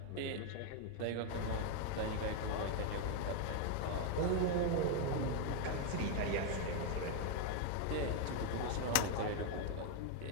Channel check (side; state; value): both; different; correlation 0.01